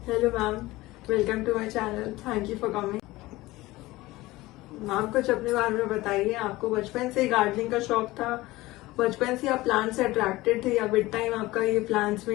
Hello ma'am, welcome to my channel. Thank you for coming. Ma'am, कुछ अपने बारे में बताइए। आपको बचपन से ही गार्डनिंग का शौक था? बचपन से आप प्लांट से अट्रैक्टेड थे या विद टाइम आपका ये प्लांट्स में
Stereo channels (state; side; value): quieter; right; 19.0 dB